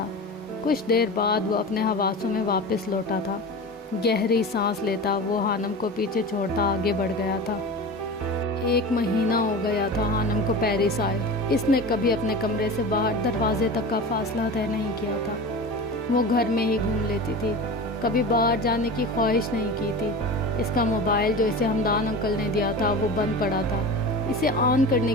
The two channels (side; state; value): both; normal; correlation 0.31